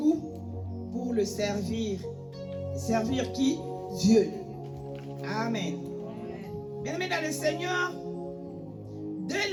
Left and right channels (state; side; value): identical; both; correlation 1.00